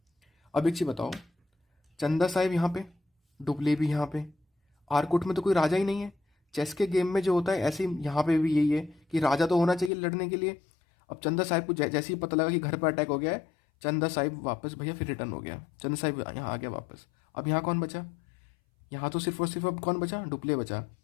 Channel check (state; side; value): drops out; right; at 9.9 s